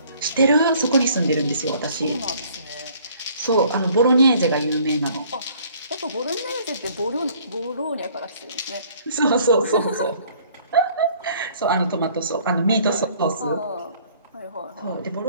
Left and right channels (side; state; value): both; inverted; correlation -0.57